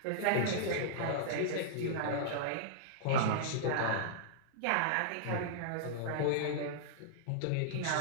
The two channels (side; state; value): both; different; correlation -0.02